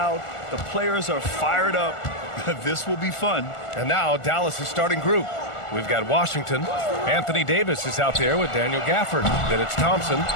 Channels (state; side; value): late; right; 1.4 ms